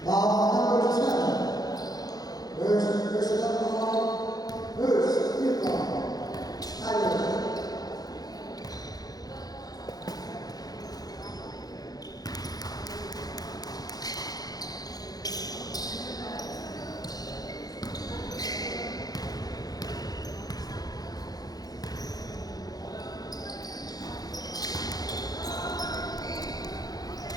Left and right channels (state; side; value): late; right; 0.19 ms